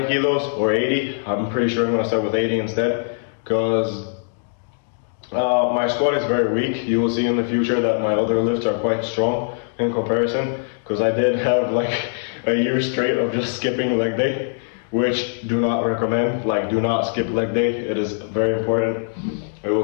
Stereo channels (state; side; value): silent; right; digital silence